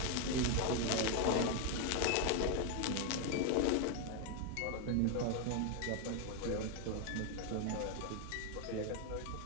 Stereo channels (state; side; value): different; both; correlation 0.01